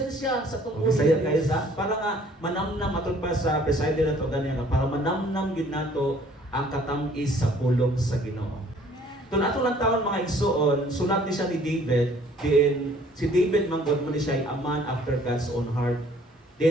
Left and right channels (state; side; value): normal; both; correlation 0.57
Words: sa tungkol. Saya kayo sa para nga manamnam aton pa sa preside na to ganyan para manamnam gyud nato ang katamis sa pulong sa Ginoo. Tun ato lang taon mga igsoon, sulat ni siya ni David, din si David manggod mo ni siya ay a man after God's own heart.